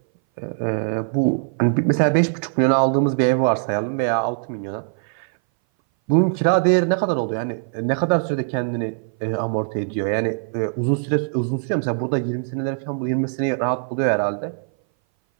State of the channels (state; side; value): silent; left; 59 dB below the other